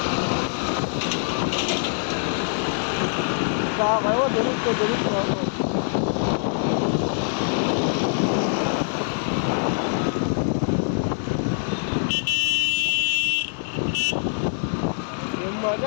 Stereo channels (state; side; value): silent; right; digital silence